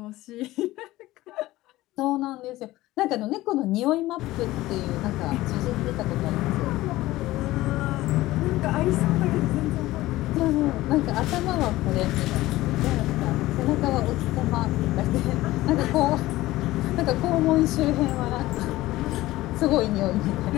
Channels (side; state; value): right; quieter; 17.2 dB